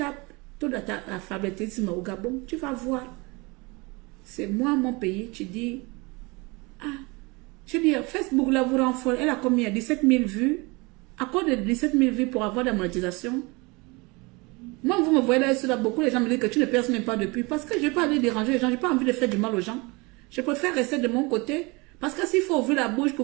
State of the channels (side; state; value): left; quieter; 26.3 dB